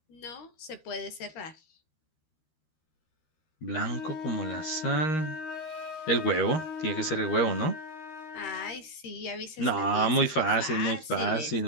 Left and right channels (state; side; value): late; right; 13 ms